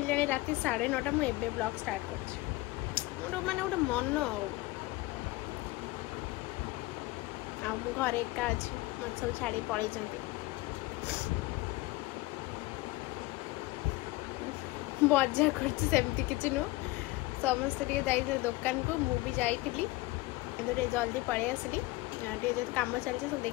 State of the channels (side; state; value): right; quieter; 20.5 dB